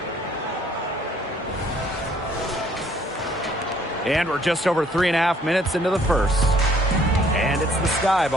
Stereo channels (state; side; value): normal; both; correlation 0.62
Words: And we're just over 3.5 minutes into the first. And it's the Sky